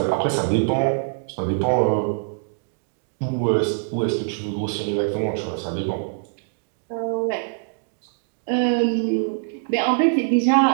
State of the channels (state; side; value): silent; left; digital silence